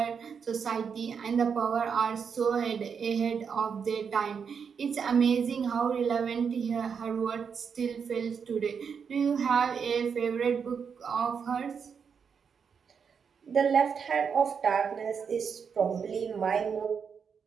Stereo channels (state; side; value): quieter; left; 6.5 dB